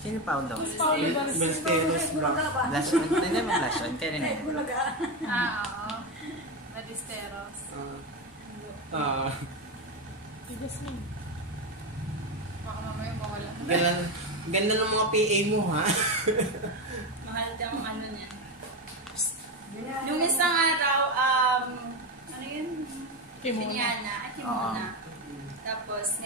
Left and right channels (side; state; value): both; normal; correlation 0.14